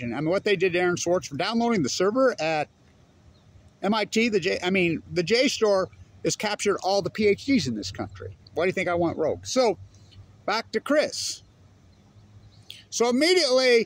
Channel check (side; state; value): both; identical; correlation 1.00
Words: I mean, what they did to Aaron Swartz for downloading the server at MIT, the JSTOR has captured all the PhDs in this country. Why do you think I went rogue? So, back to Chris. So